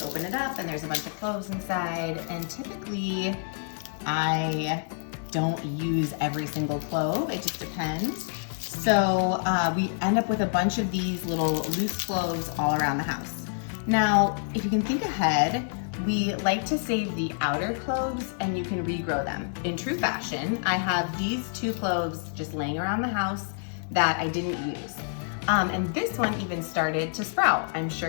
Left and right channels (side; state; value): right; silent; digital silence